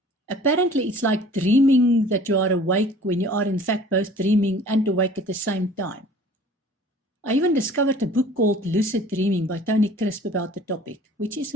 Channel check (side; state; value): both; normal; correlation 0.49